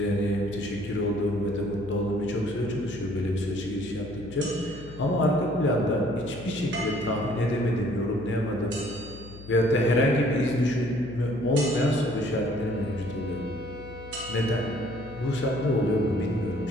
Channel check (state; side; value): noise; left; hum, 16 dB below the sound